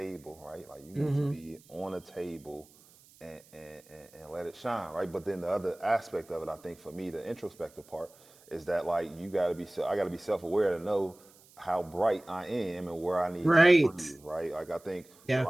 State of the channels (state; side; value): noise; right; hiss, 26 dB below the sound